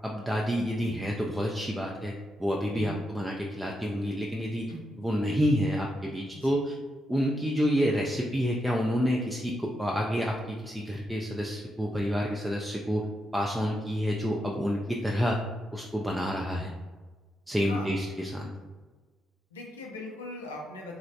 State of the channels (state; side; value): normal; both; correlation 0.84